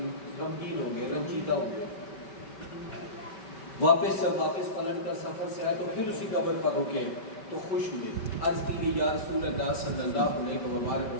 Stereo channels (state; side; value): late; right; 5.2 ms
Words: ہو گئے، رنجیدہ ہو گئے۔ واپس پلٹ کر سفر سے آئے تو پھر اسی قبر پر رکے تو خوش ہوئے، عرض کی گئی یا رسول اللہ صلی اللہ علیہ